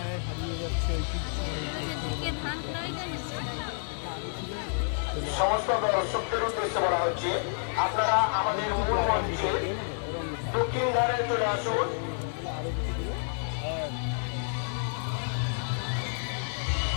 হারিয়ে যাচ্ছে সমস্ত দর্শকদের উদ্দেশ্যে বলা হচ্ছে, আপনারা আমাদের মূল মঞ্চে দক্ষিণ ধারে চলে আসুন।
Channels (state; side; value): silent; right; digital silence